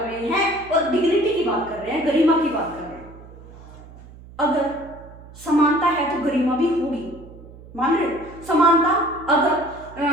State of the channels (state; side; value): noise; right; hum, 19 dB below the sound